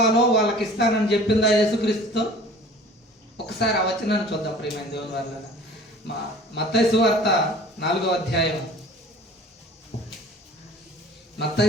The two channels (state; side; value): normal; both; correlation 0.45